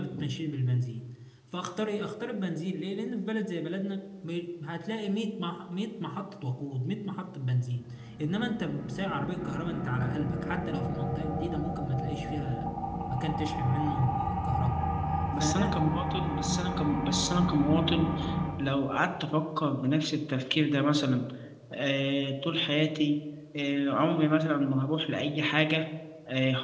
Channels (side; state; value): both; identical; correlation 1.00